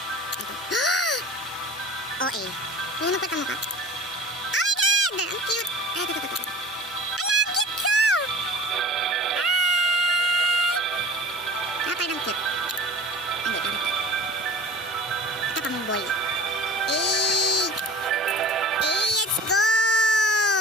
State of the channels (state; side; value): normal; both; correlation 0.42